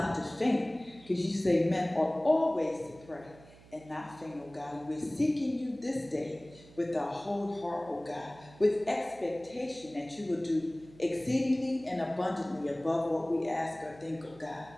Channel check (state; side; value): noise; right; hum, 22 dB below the sound